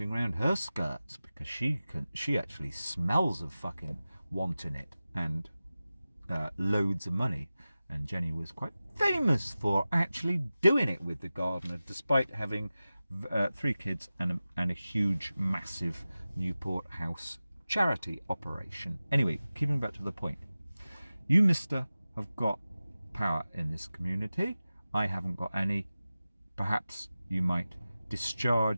around her skirts because she actually smells of fucking wanting it and loads of money. And Jenny was quite famous for actually doing it with the gardener, despite having 3 kids and a huge, massive Newport House charity operation. Anyway, keeping back to the point. You, mister, have got power in this community. I haven't got any. Perhaps you might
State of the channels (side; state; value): both; inverted; correlation -0.95